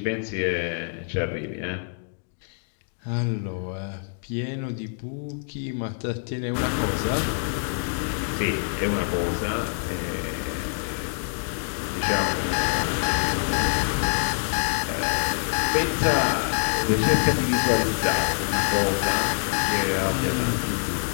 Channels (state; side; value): silent; right; digital silence